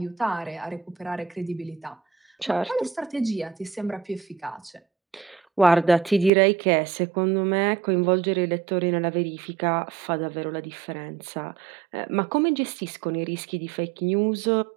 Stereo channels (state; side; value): drops out; left; at 6.3 s